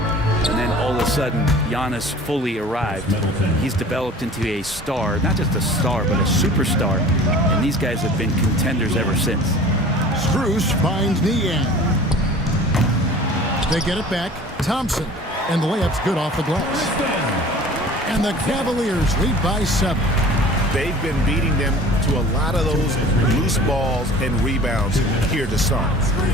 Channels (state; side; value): normal; both; correlation 0.44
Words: then all of a sudden, Giannis fully arrived. He's developed into a star, not just a star, but a superstar, and these guys have been contenders ever since. Strus finds Niang. They get it back. Thompson, and the layup's good off the glass. And the Cavaliers lead by 7. They've been beating them to a lot of those loose balls and rebounds here to start.